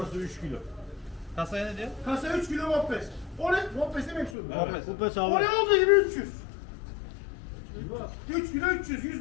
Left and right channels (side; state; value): right; drops out; at 4.4 s